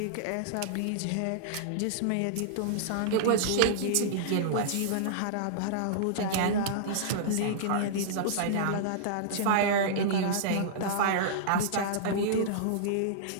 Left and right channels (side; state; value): both; different; correlation -0.02